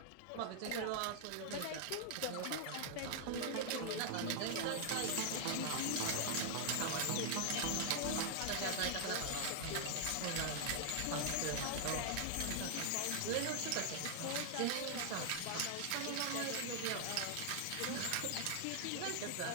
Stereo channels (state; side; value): different; both; correlation 0.00